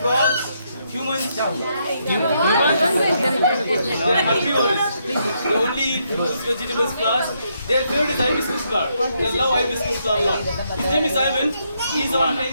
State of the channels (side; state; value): both; inverted; correlation -0.77